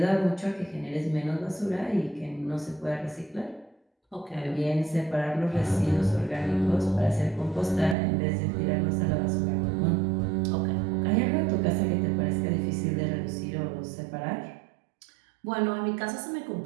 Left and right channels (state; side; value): drops out; left; at 8.0 s